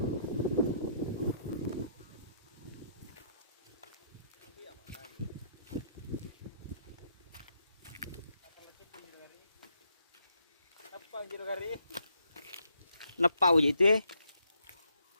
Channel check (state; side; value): inverted; both; correlation -0.74